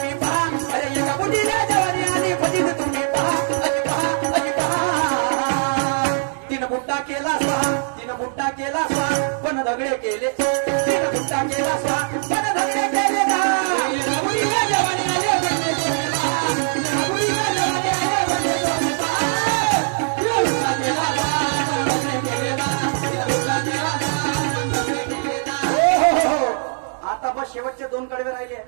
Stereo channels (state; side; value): silent; left; digital silence